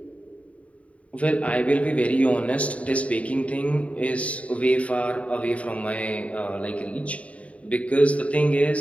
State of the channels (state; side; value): late; right; 0.065 ms